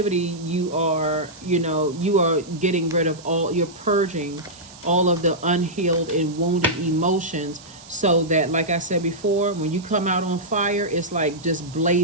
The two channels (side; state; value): right; noise; hiss, 20 dB below the sound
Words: you are, you know, you are getting rid of all, you're purging all of the unhealed and wounded emotions, so that, like I said before, when you come out on fire, it's like just